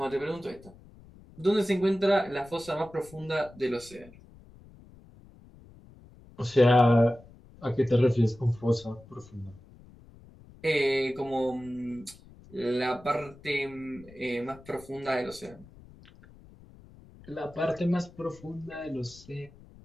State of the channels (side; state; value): left; noise; rumble, 22 dB below the sound